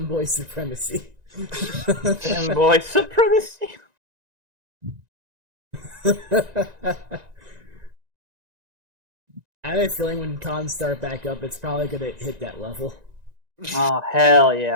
supremacy. Boy supremacy. I have a feeling when cons start back up, it's probably gonna hit that level. Oh hell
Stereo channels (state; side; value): late; left; 1.9 ms